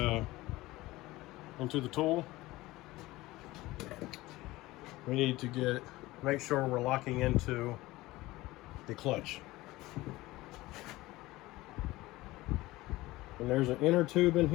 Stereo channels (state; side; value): quieter; right; 18.8 dB